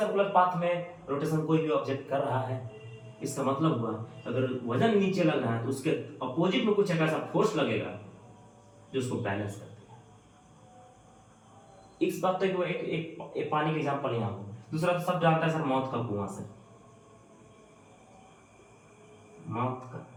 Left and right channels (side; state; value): both; identical; correlation 1.00